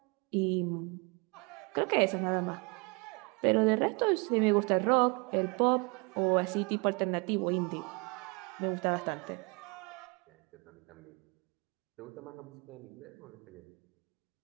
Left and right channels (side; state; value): left; quieter; 30.7 dB